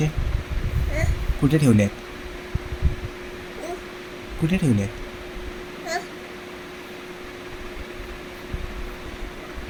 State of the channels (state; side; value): identical; both; correlation 1.00